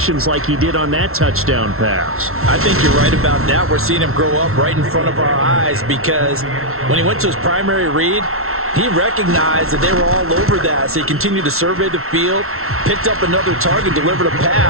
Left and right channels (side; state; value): left; late; 0.62 ms